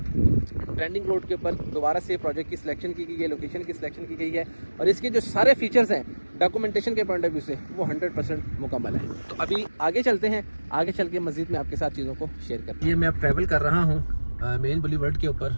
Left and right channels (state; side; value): inverted; both; correlation -1.00